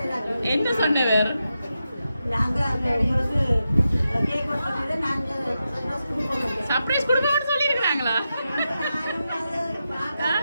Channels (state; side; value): inverted; both; correlation -0.88